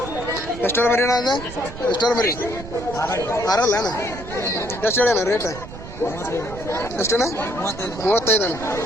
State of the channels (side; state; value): right; noise; rumble, 13 dB below the sound